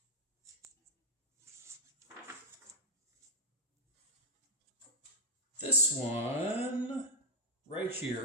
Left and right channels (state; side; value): normal; both; correlation -0.01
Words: This one right